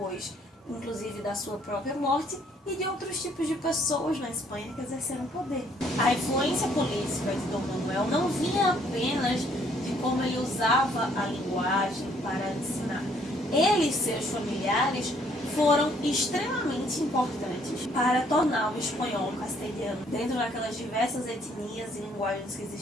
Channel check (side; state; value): both; normal; correlation 0.65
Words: inclusive da sua própria morte, e de outros tipos de pessoas na Espanha que exerceram poder. A influência política de Dom Manuel não vinha apenas de como ele usava a linguagem para ensinar. Ele e seus familiares foram extremamente importantes para tornar o espanhol castelhano, dentro daquelas diversas etnias e linguagens que